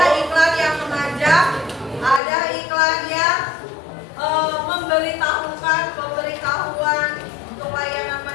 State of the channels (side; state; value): right; drops out; at 2.2 s